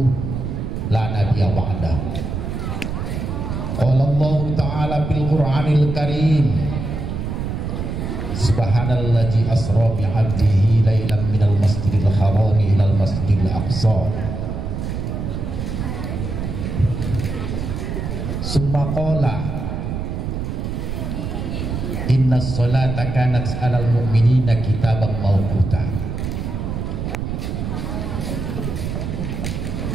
la nabiyya ba'dah. Qala Allah Ta'ala fil Qur'anil Karim, Subhanalladzi asra bi 'abdihi lailan minal masjidil haram ilal masjidil aqsa. Summa qala innas salata kanat 'alal mu'minina kitaban mawquta.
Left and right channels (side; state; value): right; noise; rumble, 4 dB below the sound